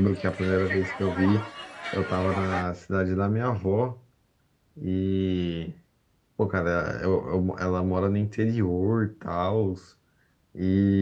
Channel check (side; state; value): both; identical; correlation 1.00